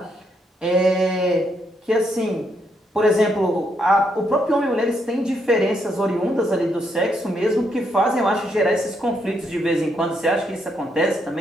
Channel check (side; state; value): both; normal; correlation 0.76